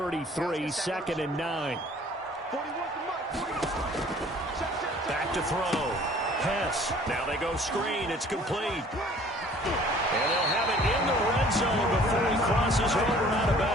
2nd and 9. Back to throw. Hess. Now they go screen. It's complete. And they'll have it in the red zone before he crosses over and out of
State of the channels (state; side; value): normal; both; correlation 0.53